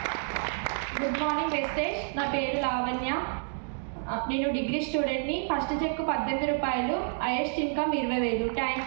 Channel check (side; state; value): left; silent; digital silence